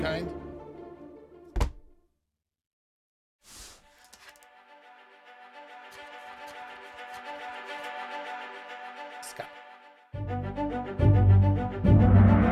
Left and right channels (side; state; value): both; identical; correlation 1.00